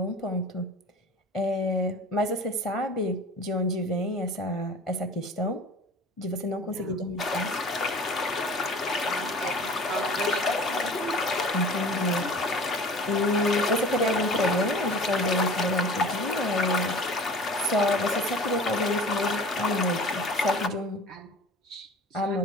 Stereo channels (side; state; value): both; normal; correlation 0.41